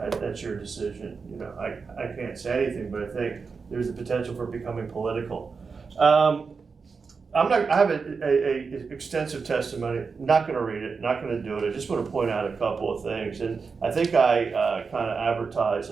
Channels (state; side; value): quieter; left; 5.0 dB